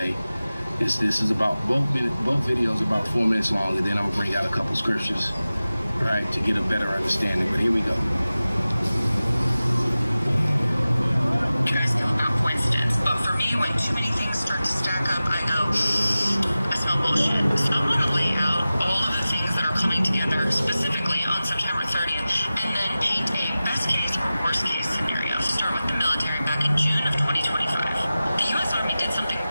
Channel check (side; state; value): both; inverted; correlation -0.96